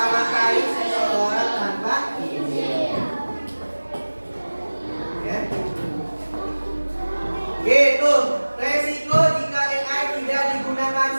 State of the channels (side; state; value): both; inverted; correlation -1.00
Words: seseorang tanpa izin. Ya. Itu resiko jika AI tidak digunakan